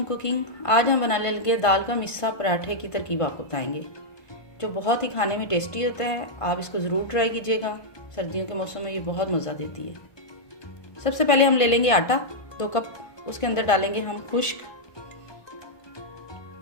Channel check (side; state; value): right; late; 1.5 ms